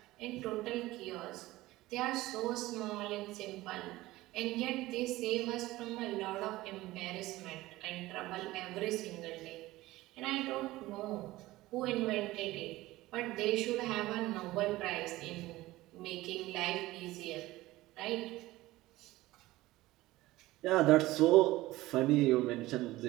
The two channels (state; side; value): quieter; left; 17.9 dB